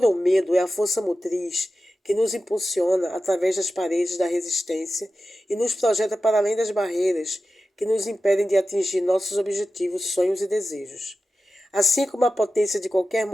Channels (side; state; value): both; normal; correlation 0.93